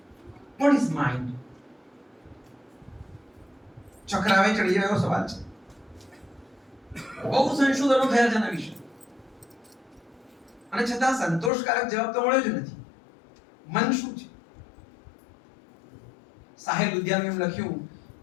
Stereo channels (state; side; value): drops out; right; at 11.5 s